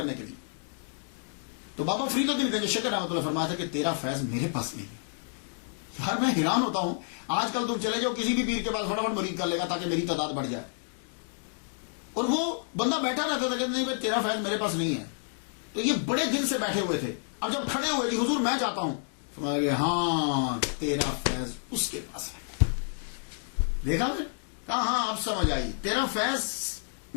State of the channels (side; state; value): right; silent; digital silence